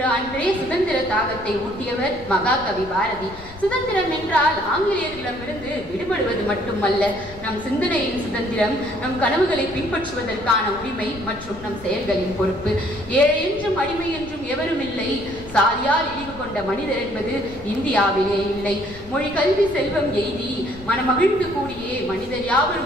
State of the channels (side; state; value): left; noise; rumble, 17 dB below the sound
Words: அன்றே சுதந்திர தாகத்தை ஊட்டியவர் மகாகவி பாரதி. சுதந்திரம் என்றால் ஆங்கிலேயர்களிடமிருந்து விடுபடுவது மட்டுமல்ல, நம் சிந்தனையின் சுதந்திரம், நம் கனவுகளை பின்பற்றுவதற்கான உரிமை மற்றும் நம் செயல்களின் பொறுப்பு. ஏழை என்றும் அடிமை என்றும் எவரும் இல்லை, சாதியால் இழிவு கொண்ட மனிதர் என்பது இந்தியாவிலே இல்லை. மொழி கல்வி செல்வம் எய்தி மனமகிழ்ந்து கூடியே மனிதர்